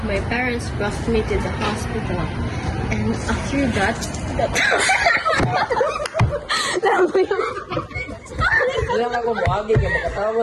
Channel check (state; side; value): identical; both; correlation 1.00